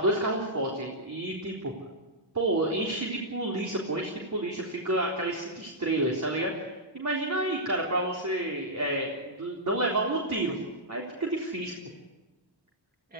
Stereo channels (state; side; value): normal; both; correlation -0.11